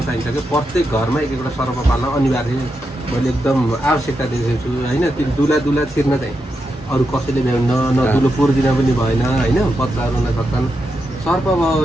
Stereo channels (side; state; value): both; normal; correlation 0.86